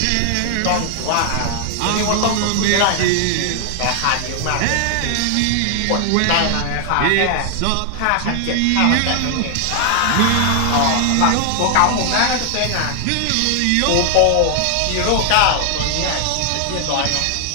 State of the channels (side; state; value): both; different; correlation 0.00